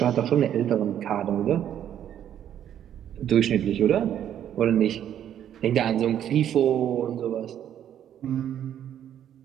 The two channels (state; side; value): quieter; left; 10.3 dB